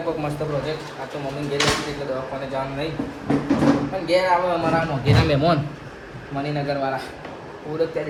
કોઈક મસ્ત પ્રોજેક્ટ. આ તો મમ્મી ઘેર હતી એટલે દવાખાને જવાનું નહીં, પણ ઘેર આવે અમારા મોઘેના મહેમાન મણિનગરવાળા ઓળખતા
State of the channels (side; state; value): both; identical; correlation 1.00